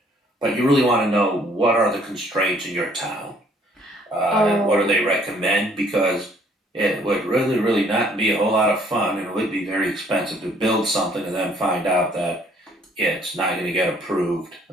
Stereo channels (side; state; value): both; normal; correlation 0.61